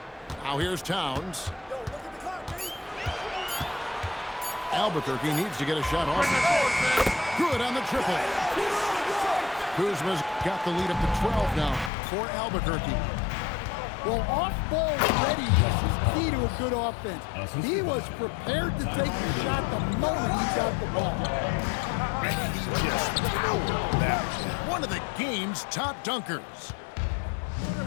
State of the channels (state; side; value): drops out; right; at 11.9 s